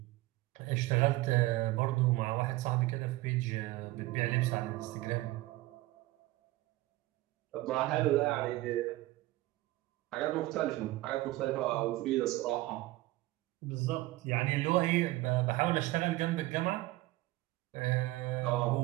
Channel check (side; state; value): left; quieter; 18.2 dB